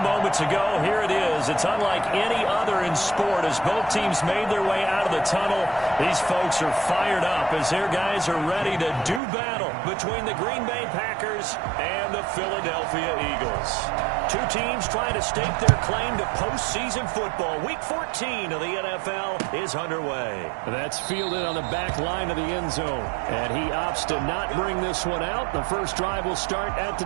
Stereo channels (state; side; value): drops out; left; at 9.2 s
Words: moments ago, here it is. It's unlike any other in sport as both teams made their way out of the tunnel. These folks are fired up as their guys are ready to do battle between the Green Bay Packers and the Philadelphia Eagles. Two teams trying to stake their claim to postseason football. Week 14 of the NFL is underway. That's fielded on the back line of the end zone. And he opts to not bring this one out. The first drive will start at the